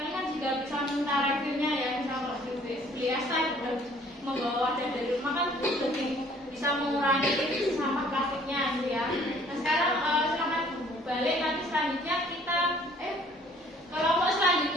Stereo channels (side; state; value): both; normal; correlation 0.57